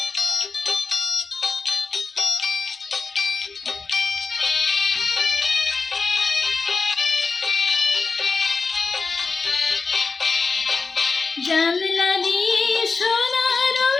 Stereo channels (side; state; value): right; quieter; 4.5 dB